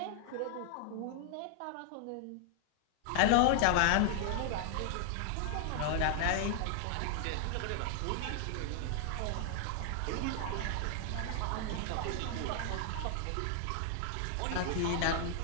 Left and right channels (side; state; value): both; different; correlation 0.00